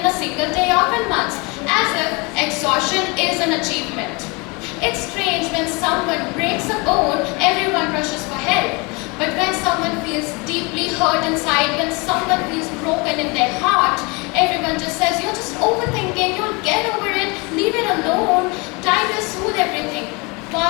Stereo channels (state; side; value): quieter; right; 28.2 dB